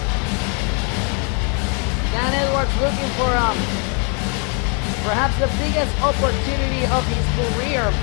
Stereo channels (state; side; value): quieter; right; 37.4 dB